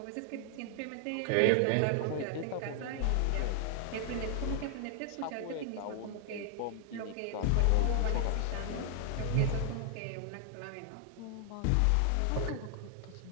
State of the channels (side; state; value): both; different; correlation 0.00